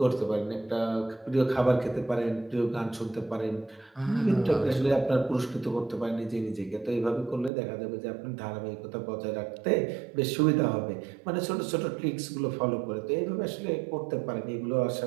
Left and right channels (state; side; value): drops out; left; at 7.5 s